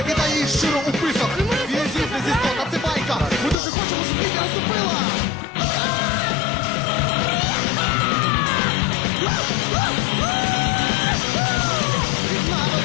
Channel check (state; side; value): drops out; right; at 3.6 s